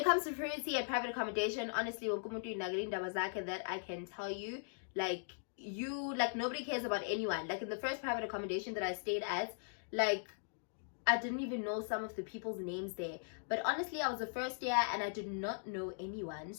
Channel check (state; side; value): silent; right; digital silence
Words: comes to privacy and private accommodation, honestly, that I can tell you, like, nobody cares about anyone. Like, in the first private accommodation that I stayed at, like, I didn't even know some of the people's names there. But honestly, I was the first year and I did not know anyone,